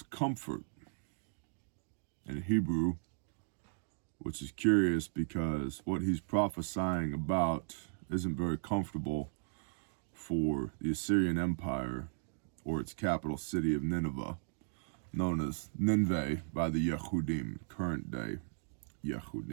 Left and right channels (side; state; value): left; silent; digital silence